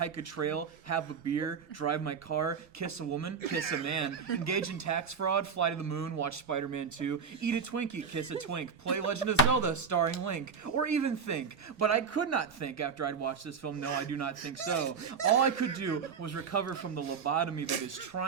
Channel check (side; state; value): left; quieter; 6.1 dB